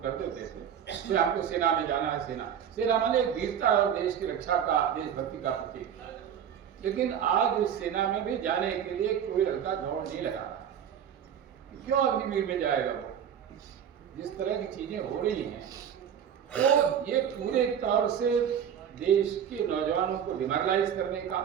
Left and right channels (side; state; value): left; quieter; 8.7 dB